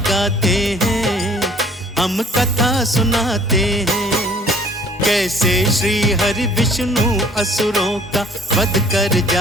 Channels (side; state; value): both; normal; correlation 0.54